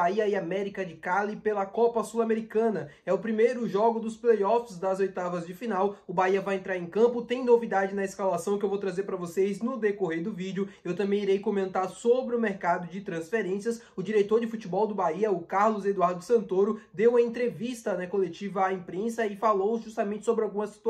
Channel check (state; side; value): identical; both; correlation 1.00